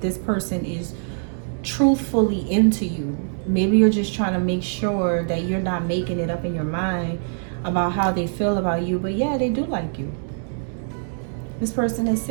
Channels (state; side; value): silent; left; 63 dB below the other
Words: person is truthfully into you. Maybe you're just trying to make sure that you're not making it up in your mind about how they feel about you. But yeah, they do like you. This person is